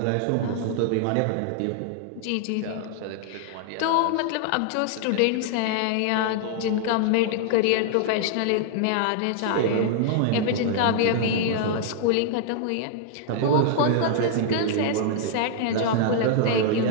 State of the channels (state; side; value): different; both; correlation -0.01